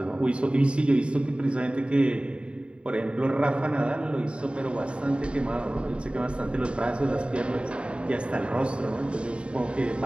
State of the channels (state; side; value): late; left; 0.057 ms